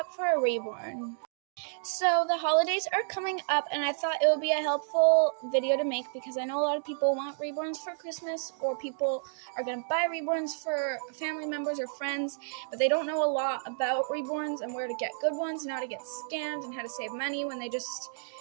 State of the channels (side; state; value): left; silent; digital silence